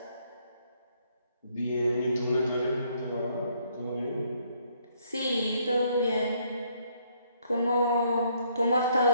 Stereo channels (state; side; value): inverted; both; correlation -0.68